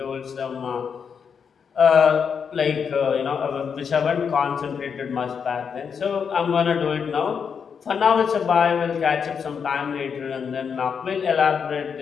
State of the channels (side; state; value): right; quieter; 6.6 dB